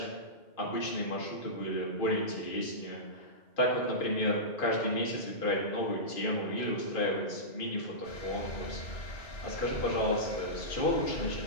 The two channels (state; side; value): late; right; 2.5 ms